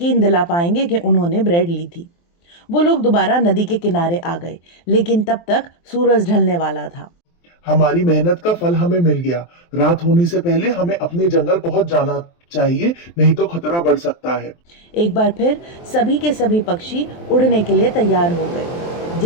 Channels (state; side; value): late; right; 23 ms